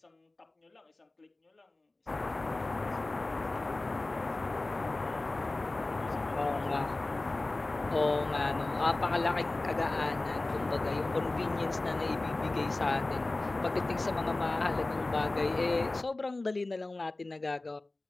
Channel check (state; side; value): quieter; right; 3.0 dB